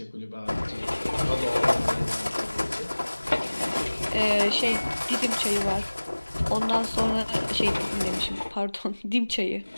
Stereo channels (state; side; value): inverted; both; correlation -1.00